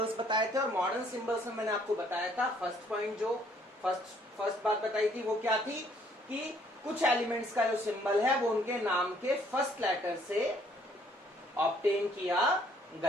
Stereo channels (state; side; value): normal; both; correlation 0.63